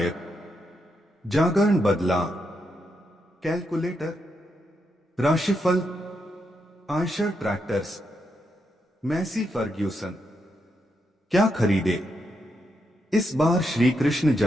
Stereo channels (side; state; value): both; normal; correlation 0.82